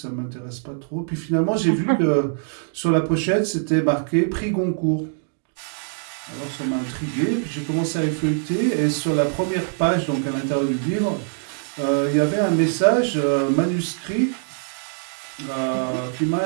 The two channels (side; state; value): left; silent; digital silence